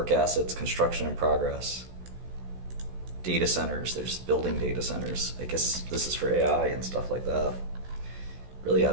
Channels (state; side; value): late; left; 16 ms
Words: assets, construction in progress. Data centers. They're just building data centers. I guess this is for AI and stuff like that. Really